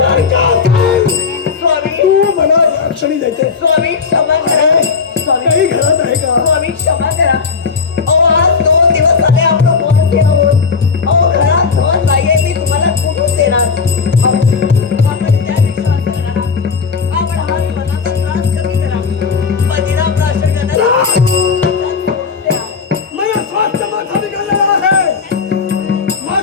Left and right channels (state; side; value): quieter; right; 5.3 dB